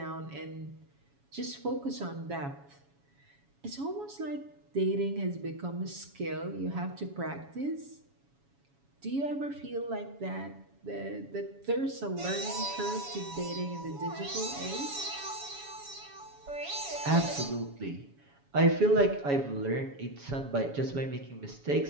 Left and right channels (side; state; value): left; late; 7.2 ms